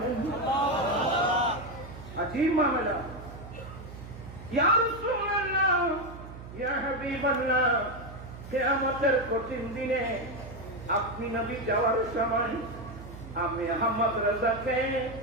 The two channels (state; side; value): noise; right; hum, 14 dB below the sound